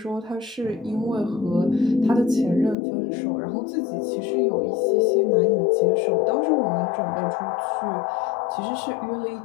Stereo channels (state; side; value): drops out; right; at 2.8 s